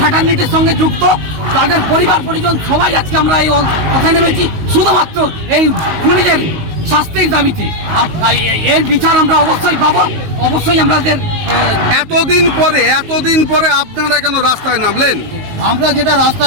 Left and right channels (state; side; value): late; left; 19 ms